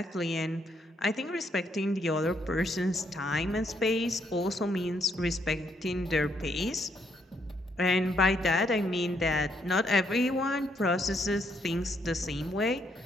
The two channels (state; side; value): normal; both; correlation 0.73